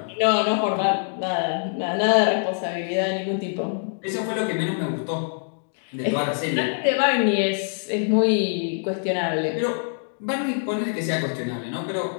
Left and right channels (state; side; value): silent; right; 62 dB below the other